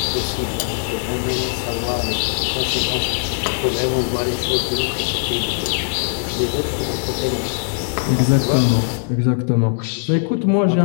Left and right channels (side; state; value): right; silent; digital silence